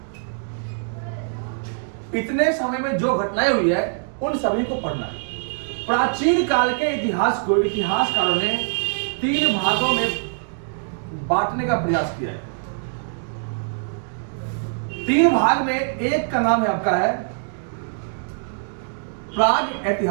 इतने समय में जो घटनाएं हुई है उन सभी को पढ़ना है। प्राचीन काल के इतिहास को इतिहासकारों ने 3 भागों में बांटने का प्रयास किया है। 3 भाग में एक का नाम है आपका है प्राग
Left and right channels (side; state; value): left; silent; digital silence